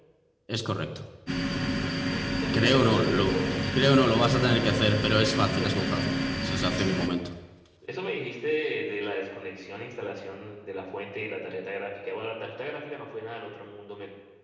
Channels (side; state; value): both; identical; correlation 1.00